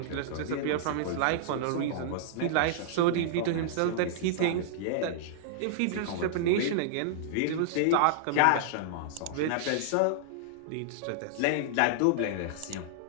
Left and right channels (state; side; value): different; both; correlation -0.01